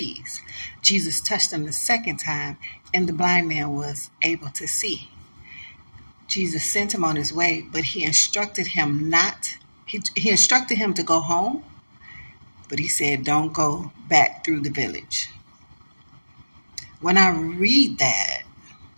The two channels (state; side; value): inverted; both; correlation -1.00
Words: Jesus touched him the second time and the blind man was able to see. Jesus sent him on his way, but he instructed him he instructed him to go home, but he said, "Don't go back through the village." When I read that